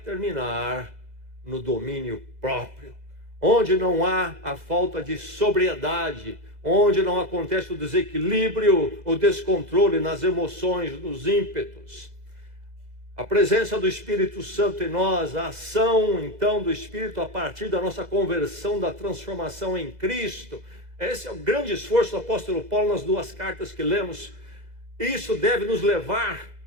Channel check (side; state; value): left; late; 2.0 ms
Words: no domínio próprio. Onde não há a falta de sobriedade, onde não acontece o desequilíbrio, o descontrole nas emoções, nos ímpetos. A presença do Espírito Santo em nós, a ação então do Espírito a partir da nossa conversão, da transformação em Cristo. Esse é o grande esforço do apóstolo Paulo nas duas cartas que lemos. Isso deve nos levar